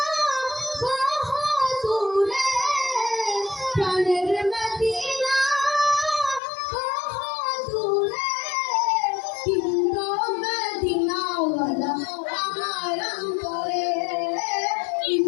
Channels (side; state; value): right; drops out; at 6.4 s